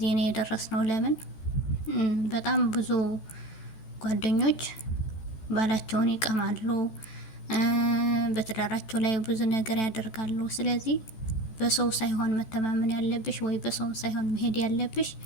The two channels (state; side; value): late; right; 14 ms